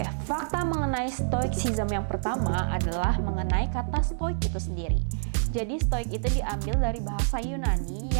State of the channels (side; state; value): left; silent; digital silence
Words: fakta mengenai Stoicism yang pertama adalah mengenai kata stoik itu sendiri. Jadi stoik itu diambil dari bahasa Yunani